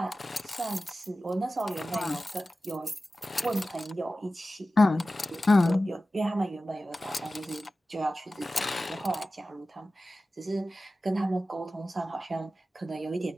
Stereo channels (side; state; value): both; normal; correlation 0.95